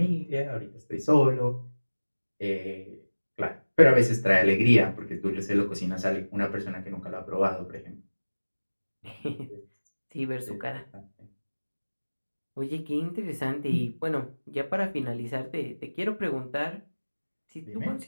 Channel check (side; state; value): both; inverted; correlation -1.00